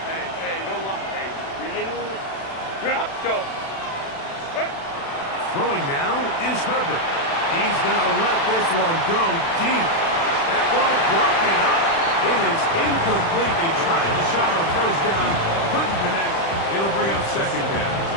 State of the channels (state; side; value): late; right; 36 ms